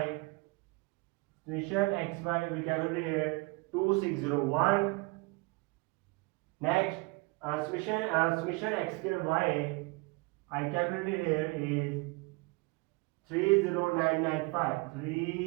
we calculated here 2601. Next, summation x square y I calculated here is 30995.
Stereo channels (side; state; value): left; quieter; 26.1 dB